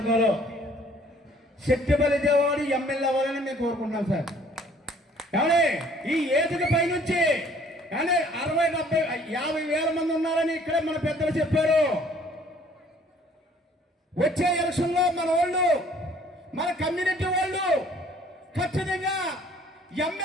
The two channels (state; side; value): normal; both; correlation 0.57